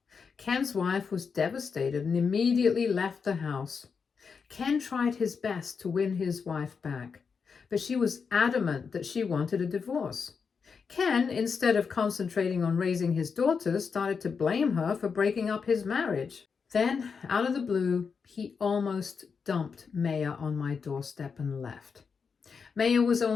Ken's wife was devastated and immediately left the house. Ken tried his best to win his wife back, but she was adamant that she wanted a divorce. Ken, instead of concentrating on raising his daughters, started to blame her for breaking up his marriage. Then, out of the blue, he almost dumped Maya on my doorstep and left. Maya was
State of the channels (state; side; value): quieter; right; 5.7 dB